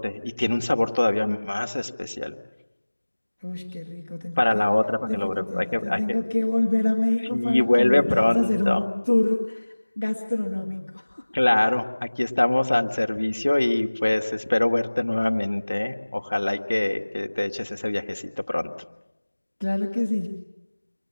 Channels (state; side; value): inverted; both; correlation -1.00